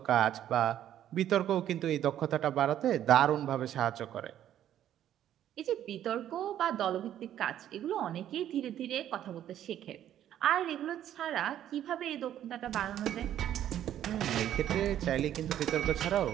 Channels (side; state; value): left; quieter; 11.2 dB